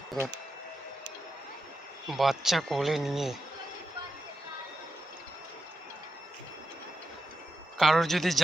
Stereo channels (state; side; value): normal; both; correlation 0.88